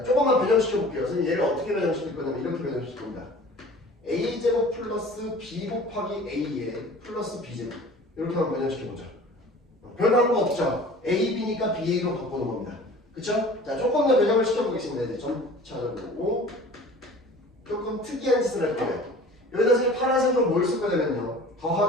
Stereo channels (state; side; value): normal; both; correlation 0.44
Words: 조금만 변형시켜 볼게요. 선생님 얘를 어떻게 변형시킬 거냐면 이렇게 변형시킬 겁니다. A제곱 플러스 B 곱하기 A에 플러스 B제곱 이렇게 한번 변형시켜 보죠. 변한 거 없죠? A, B니까 B, A로 바꾸는 겁니다. 그쵸? 자, 조금 더 변형을 시켜보겠습니다. 이제 점차로 조금 특이한 짓을 할 거예요. 여기다 선생님 파란색으로 뭘 쓸 거냐면요.